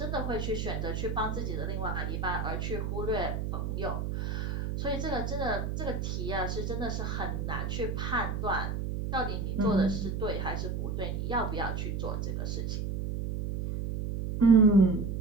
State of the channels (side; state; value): right; noise; hum, 2 dB below the sound